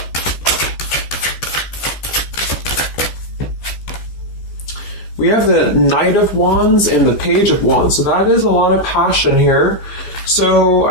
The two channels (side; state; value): right; late; 14 ms